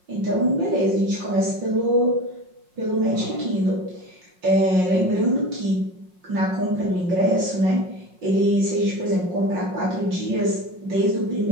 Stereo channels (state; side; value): late; left; 5.6 ms